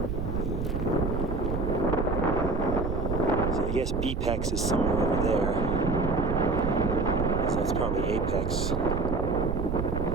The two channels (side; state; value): right; noise; rumble, 2 dB below the sound